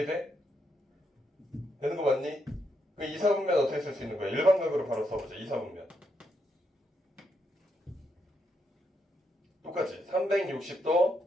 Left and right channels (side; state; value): both; normal; correlation 0.79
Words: 되는 거 맞니? 그 2사분면 어떻게 쓸 수 있는 거야? 일반각으로 바로 써보자. 2사분면 똑같이